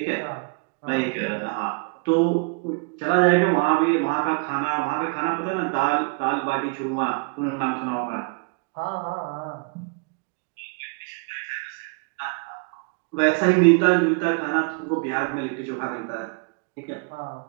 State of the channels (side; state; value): left; quieter; 33.6 dB